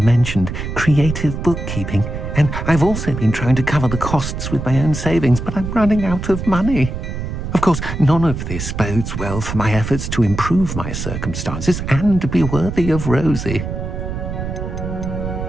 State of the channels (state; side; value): noise; right; rumble, 5 dB below the sound